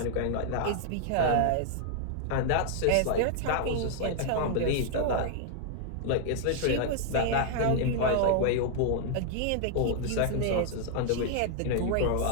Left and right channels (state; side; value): different; both; correlation -0.01